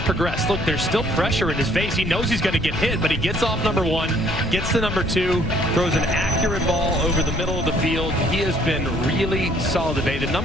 progressed. Look, there's still pressure in his face. He knows he's going to get hit, but he gets off number 1, gets to number 2, throws an accurate ball over the middle of the field. He has been really solid today. The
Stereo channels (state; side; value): noise; left; rumble, 4 dB below the sound